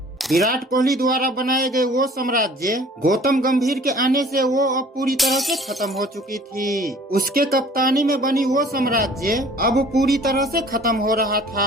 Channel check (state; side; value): normal; both; correlation 0.50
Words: विराट कोहली द्वारा बनाए गए वो साम्राज्य गौतम गंभीर के आने से वो अब पूरी तरह से खत्म हो चुकी थी। उसके कप्तानी में बनी वो साम्राज्य अब पूरी तरह से खत्म हो रहा